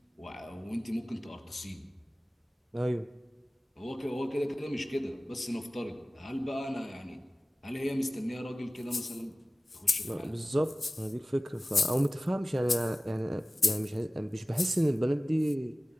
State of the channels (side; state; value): both; normal; correlation 0.97